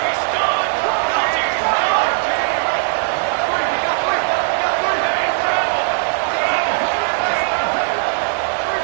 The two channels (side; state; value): left; silent; digital silence